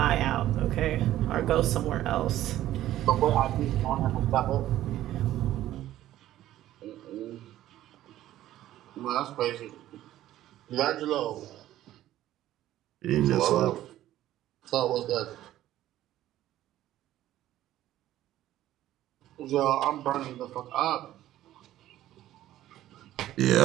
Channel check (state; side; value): quieter; left; 13.7 dB